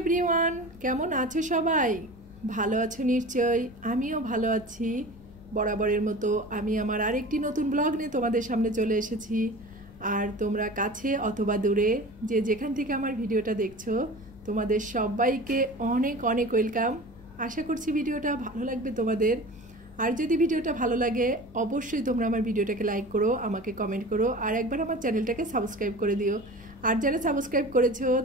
কেমন আছো সবাই? ভালো আছো নিশ্চয়ই। আমিও ভালো আছি। বরাবরের মতো আমি আমার আরেকটি নতুন ব্লগ নিয়ে তোমাদের সামনে চলে এসেছি। আর তোমরা কাছে অথবা দূরে যে যেখান থেকে আমার ভিডিওটা দেখছো, তোমাদের সবাইকে অনেক অনেক ওয়েলকাম। আশা করছি ভিডিওটা ভালো লাগবে তোমাদের। আর যদি ভিডিওটা ভালো লাগে অবশ্যই তোমরা আমার ভিডিওটাকে লাইক করো, আমাকে কমেন্ট করো, আর একবার আমার চ্যানেলটাকে সাবস্ক্রাইব করে দিও। আর যারা সাবস্ক্রাইব করেছো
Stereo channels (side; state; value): left; noise; rumble, 21 dB below the sound